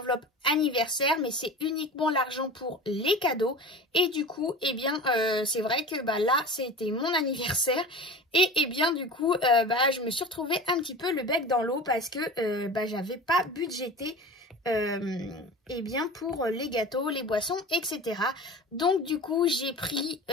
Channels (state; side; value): normal; both; correlation 0.34